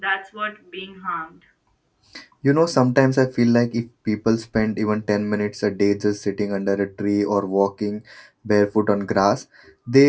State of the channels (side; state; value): both; identical; correlation 1.00